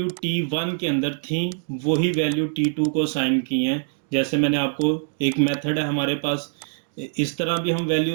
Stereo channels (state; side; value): silent; left; 59 dB below the other